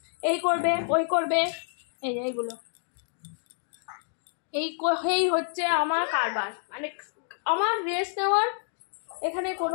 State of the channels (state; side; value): silent; right; digital silence